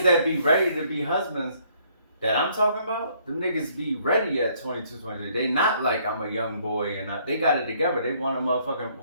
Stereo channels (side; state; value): both; inverted; correlation -0.65